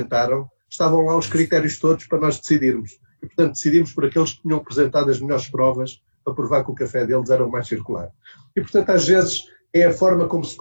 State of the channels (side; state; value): both; inverted; correlation -1.00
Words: estavam lá os critérios todos para nós decidirmos. E, portanto, decidimos por aqueles que tinham apresentado as melhores provas para provar que o café deles era o mais circular. E, portanto, às vezes é a forma como se